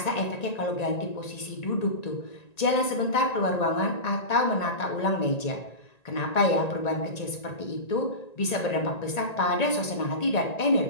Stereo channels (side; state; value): right; late; 1.9 ms